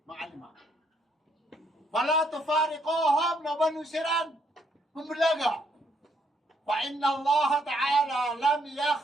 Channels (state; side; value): normal; both; correlation 0.72